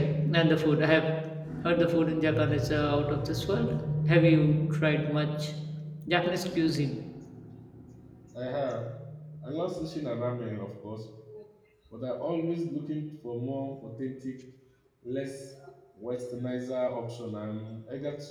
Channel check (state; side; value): identical; both; correlation 1.00